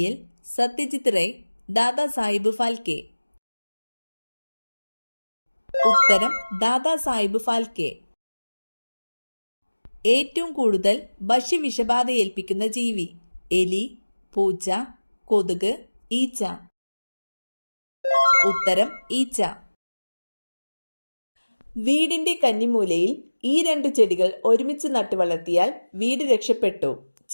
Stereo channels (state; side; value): inverted; both; correlation -1.00